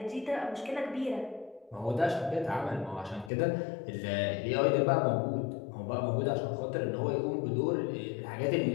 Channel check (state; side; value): drops out; right; at 3.3 s